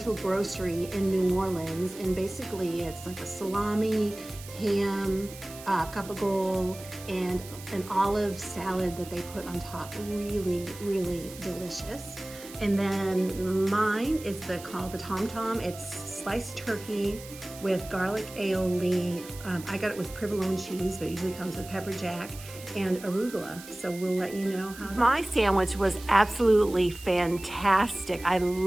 Grocery in New Orleans. And basically it's like a salami, ham, gabagool, and an olive salad that they put on top. Really, really delicious. And then mine is called the Tom Tom. It's sliced turkey with garlic aioli. I got it with provolone cheese, but it usually comes with pepper jack and arugula. So we'll let you know how. My sandwich was absolutely fantastic. I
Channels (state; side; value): noise; right; hiss, 16 dB below the sound